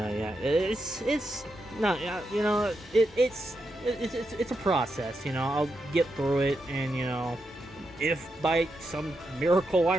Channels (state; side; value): normal; both; correlation 0.85